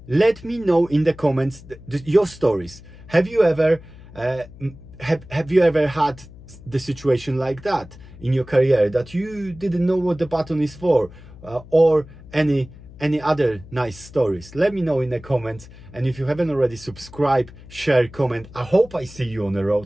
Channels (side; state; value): left; noise; hum, 19 dB below the sound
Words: Let me know in the comments your stories. Have you ever have you ever had the situation like that in your career, that you didn't know what the button is for, or any other nice stories? Let me know in the comments. And if you haven't already, subscribe, share, comment. I hope I see you on the